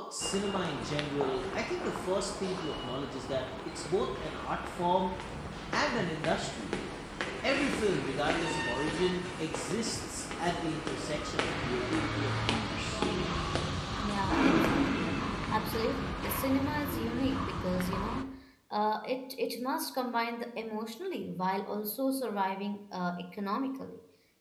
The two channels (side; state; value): both; identical; correlation 1.00